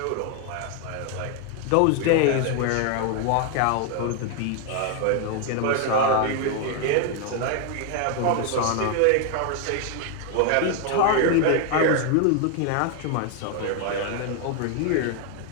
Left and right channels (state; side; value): different; both; correlation 0.01